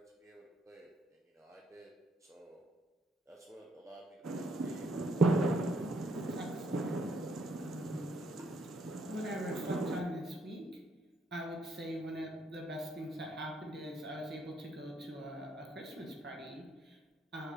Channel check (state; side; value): normal; both; correlation 0.71